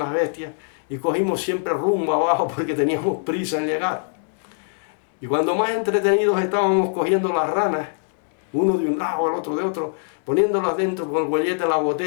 bestias, y cogimos siempre rumbo abajo porque teníamos prisa en llegar. Y cuando más entretenidos estábamos cogiendo las ranas, uno de un lado, el otro de otro, poniéndolas dentro con el huellete de la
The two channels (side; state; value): right; silent; digital silence